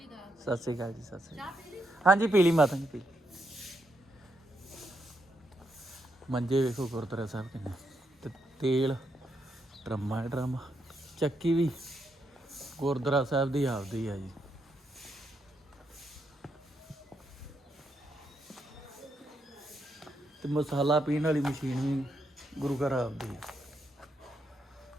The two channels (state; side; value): normal; both; correlation 0.80